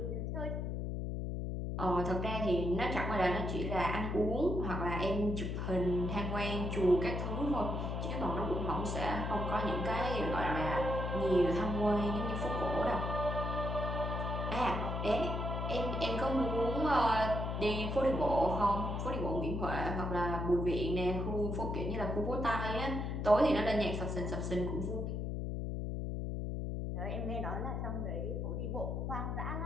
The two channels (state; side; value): noise; left; hum, 2 dB below the sound